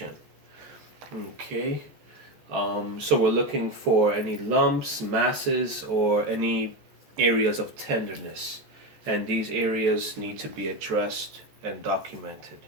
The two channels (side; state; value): left; late; 14 ms